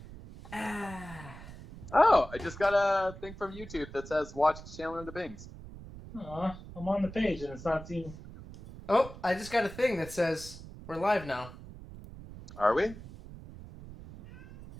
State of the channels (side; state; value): right; noise; rumble, 15 dB below the sound